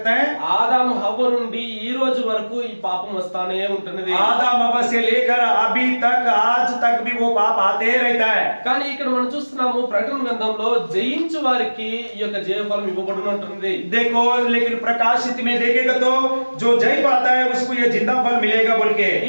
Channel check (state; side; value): inverted; both; correlation -1.00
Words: हैं? ఆదాము హవ్వ నుండి ఈ రోజు వరకు ఈ పాపం వస్తానే ఉంటున్నది. आदम हव्वा से लेकर अभी तक आज तक भी वो पाप आते ही रहता है। కానీ ఇక్కడ మనం చూస్తున్నాము ప్రకటన గ్రంథంలో జయించు వారికి ఈ యొక్క జీవఫలం ఇవ్వబడును అంటున్నది. देखो लेकिन प्रकाशित में देखेगा तो जो जय पाता है उसको ये जिंदा फल मिलेगा बोल के।